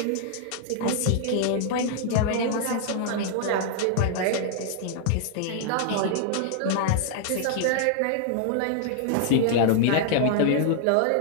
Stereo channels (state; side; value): different; both; correlation 0.00